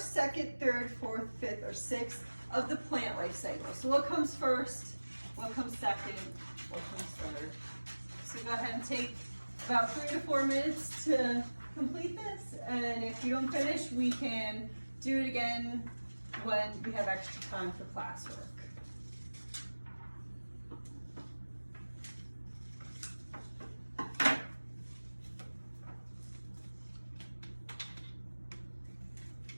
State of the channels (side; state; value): both; inverted; correlation -1.00